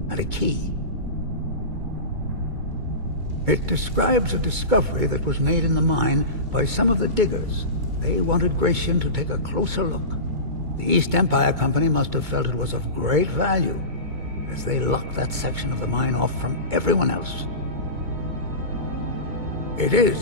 and a key. It describes a discovery that was made in the mine by some of the diggers. They wanted Gratian to take a closer look. The East Empire Company must have felt it was of great value, as they locked that section of the mine off from everyone else. It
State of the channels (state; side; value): late; left; 2.2 ms